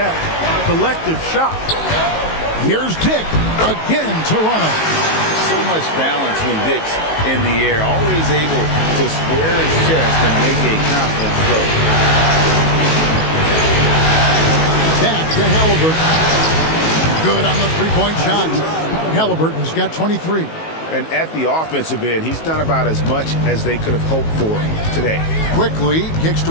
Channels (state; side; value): late; right; 19 ms